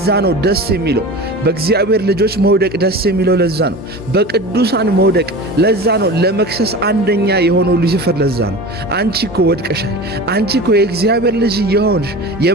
ነው ደስ የሚለው በእግዚአብሔር ልጆች መውደቅ ደስ የሚለው ለዛ ነው። በቅዱሳን መውደቅ ለዛ ነው። ለመክሰስ አንደኛ የሆነው ሉሲፈር ለዛ ነው። አንቺ እኮ ወድቀሻል፣ አንቺ እኮ የእግዚአብሔር ልጅ የሆንሽ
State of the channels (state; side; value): normal; both; correlation 0.33